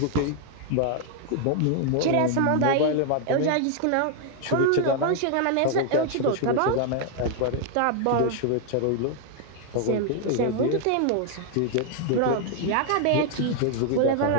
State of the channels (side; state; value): both; different; correlation 0.00